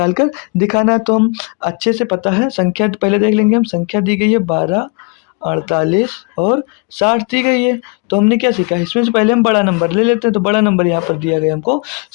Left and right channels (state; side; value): quieter; right; 31.2 dB